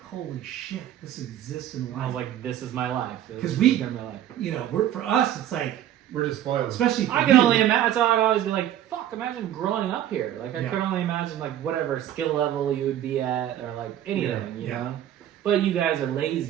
holy shit, this exists in life. I was like, this is my life. This 'Cause is we- gonna be my life. you know, for us, it's like, We're just spoiled. especially for I can you. only imagine. So I'd always be like, "Fuck!" Imagine growing up here. Like I Yeah. could only imagine like whatever skill level you would be at, or like anything, you Yeah. know. But you guys are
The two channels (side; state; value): left; quieter; 11.5 dB